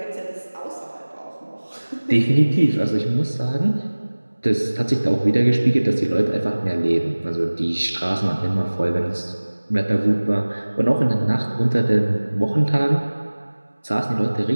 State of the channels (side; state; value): both; inverted; correlation -1.00